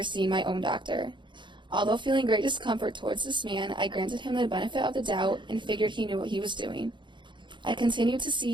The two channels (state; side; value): late; left; 0.23 ms